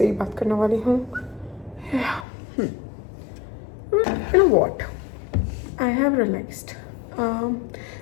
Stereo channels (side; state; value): right; drops out; at 2.2 s